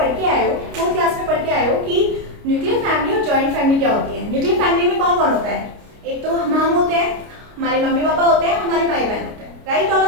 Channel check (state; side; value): late; left; 29 ms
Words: के आए हो, 4th क्लास में पढ़ के आए हो कि न्यूक्लियर फैमिली और जॉइंट फैमिली क्या होती है। न्यूक्लियर फैमिली में कौन कौन होता है? एक तो हम होते हैं, हमारे मम्मी पापा होते हैं, हमारे भाई बहन होते हैं, राइट ऑल